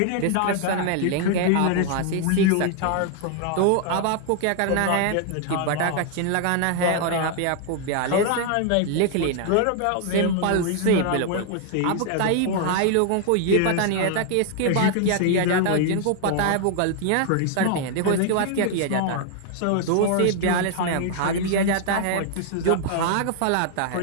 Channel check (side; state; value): both; different; correlation 0.00